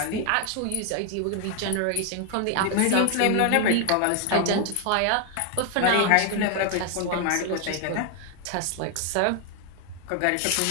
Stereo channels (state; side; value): different; both; correlation 0.00